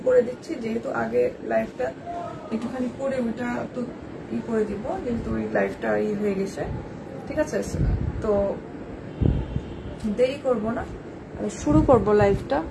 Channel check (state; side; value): identical; both; correlation 1.00